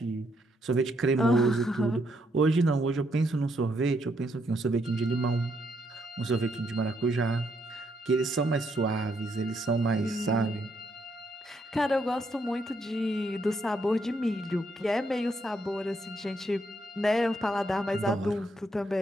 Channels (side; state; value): both; normal; correlation 0.75